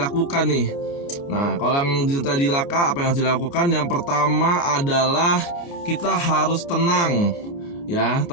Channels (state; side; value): late; right; 29 ms